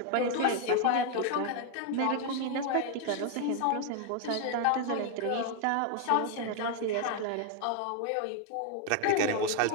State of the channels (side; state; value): both; different; correlation 0.00